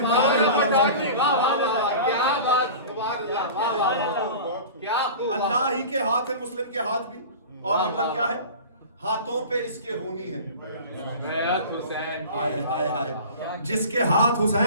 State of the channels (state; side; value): inverted; both; correlation -0.37